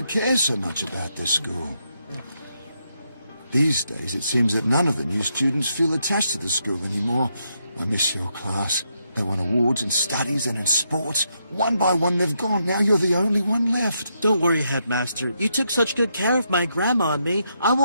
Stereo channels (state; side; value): inverted; both; correlation -0.79